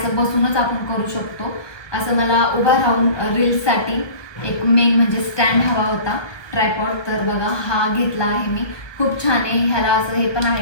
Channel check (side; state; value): right; late; 1.3 ms